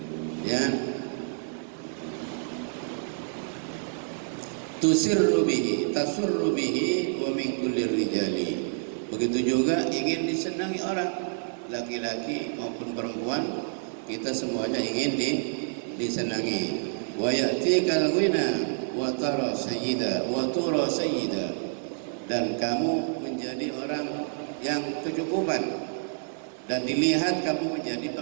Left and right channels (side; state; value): left; silent; digital silence